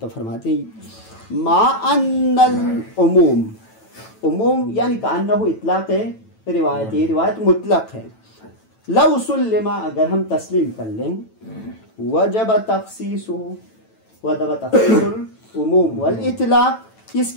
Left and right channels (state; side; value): late; right; 9.1 ms